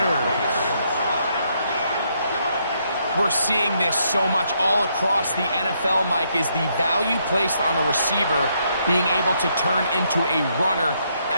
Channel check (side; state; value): both; inverted; correlation -0.74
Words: we're seeing this so much all across the NFL, Mike, is the value placed on a receiver being able to turn into a runner